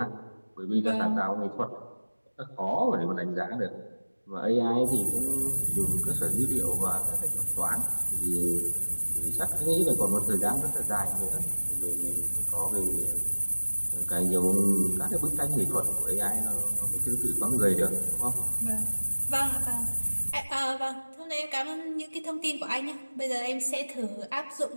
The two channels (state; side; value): inverted; both; correlation -1.00